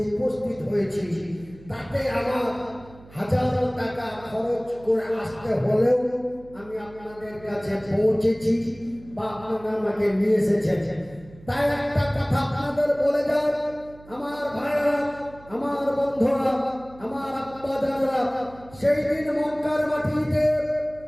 উপস্থিত হয়েছি। তাতে আমার হাজারো টাকা খরচ করে আসতে হলেও আমি আপনাদের কাছে পৌঁছেছি বা আপনারা আমাকে নিয়ে এসেছেন। তাই একটা কথা আপনাদের বলে যাও, আমার ভাইরা, আমার বন্ধুরা, আমার আব্বাজানরা, সেই দিন মক্কার মাটিতে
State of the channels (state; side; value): noise; right; hum, 21 dB below the sound